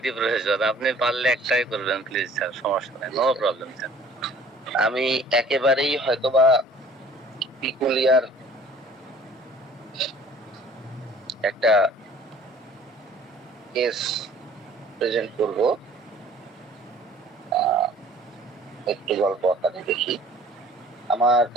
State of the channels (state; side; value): normal; both; correlation 0.52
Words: প্রয়োজন। আপনি পারলে একটাই করবেন প্লিজ স্যার, সমস্যা নেই, নো প্রবলেম স্যার। আমি একেবারেই হয়তোবা পিকুলিয়ার একটা কেস প্রেজেন্ট করব, একটু গল্প আকারে দেখি। আমার